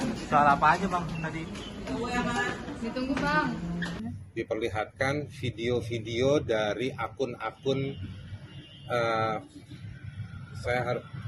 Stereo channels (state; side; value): identical; both; correlation 1.00